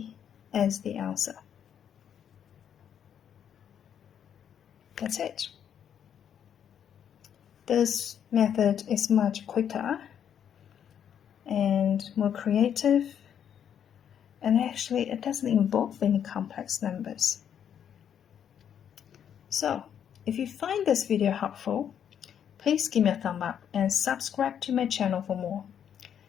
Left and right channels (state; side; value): quieter; right; 8.9 dB